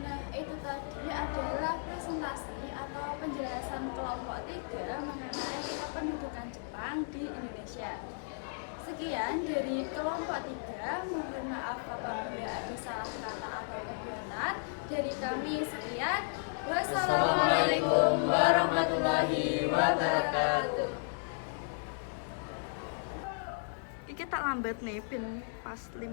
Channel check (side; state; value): right; silent; digital silence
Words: itu tadi adalah presentasi atau penjelasan kelompok 3 mengenai kependudukan Jepang di Indonesia. Sekian dari kelompok 3, mohon maaf apabila ada salah kata atau kebenaran. Dari kami sekian. Wassalamualaikum warahmatullahi wabarakatuh. Iki tak lambat nih, pin pas